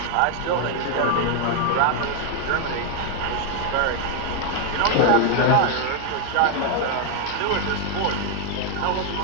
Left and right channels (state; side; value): different; both; correlation 0.00